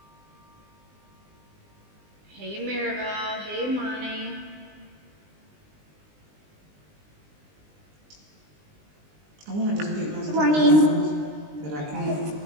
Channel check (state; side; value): late; left; 20 ms